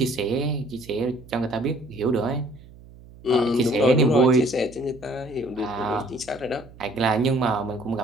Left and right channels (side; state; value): right; noise; hum, 21 dB below the sound